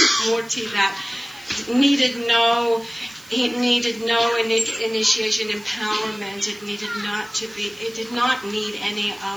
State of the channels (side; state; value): right; noise; hiss, 23 dB below the sound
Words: murti that needed no initiation, empowerment. It did not need any